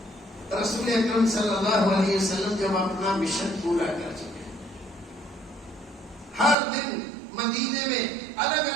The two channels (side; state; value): left; drops out; at 6.6 s